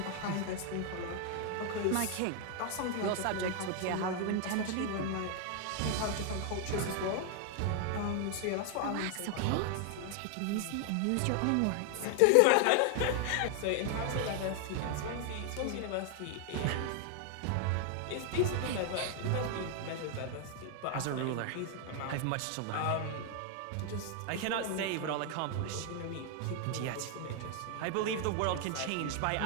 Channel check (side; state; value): both; different; correlation 0.00